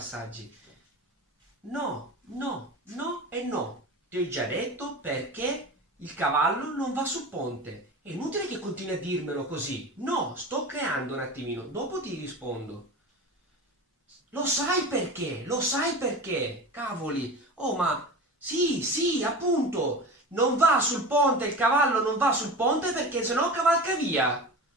No, no, no e no. Ti ho già detto perché il cavallo non va sul ponte. È inutile che continui a dirmelo così. No, sto creando un attimino, dopo ti rispondo. Lo sai perché? Lo sai perché? Cavoli. Oh, ma sì, sì, appunto. Non va sul ponte, il cavallo non va sul ponte perché sennò cavalca via.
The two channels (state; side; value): normal; both; correlation 0.31